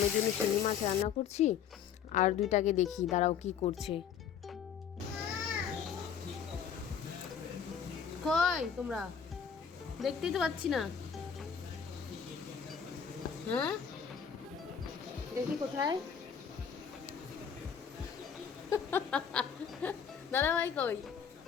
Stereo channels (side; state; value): right; quieter; 7.6 dB